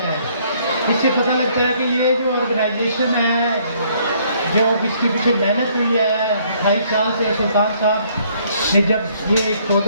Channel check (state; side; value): inverted; both; correlation -0.65